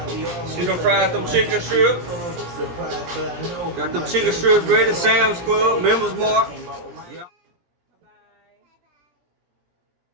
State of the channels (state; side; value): late; left; 17 ms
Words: See them fried them chicken strips. Got them chicken strips ready. Sam's Club, Members Mark.